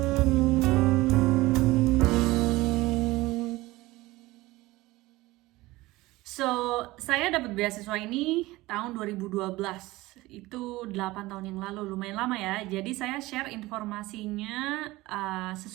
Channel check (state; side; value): quieter; left; 19.5 dB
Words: So, saya dapat beasiswa ini tahun 2012. Itu 8 tahun yang lalu, lumayan lama ya. Jadi saya share informasinya